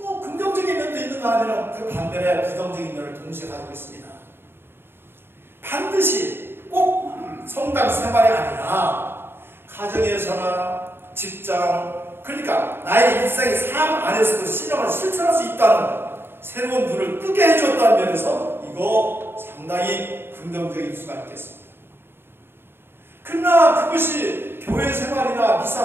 긍정적인 면도 있는가 하면 그 반면에 부정적인 면을 동시에 가지고 있습니다. 반드시 꼭 성당 생활이 아니라 가정에서나 직장, 그러니까 나의 일상의 삶 안에서도 신앙을 실천할 수 있다는 새로운 문을 뜨게 해줬다는 면에서 이거 상당히 긍정적일 수가 있겠습니다. 그러나 그것이 교회 생활이나 미사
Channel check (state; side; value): late; left; 0.11 ms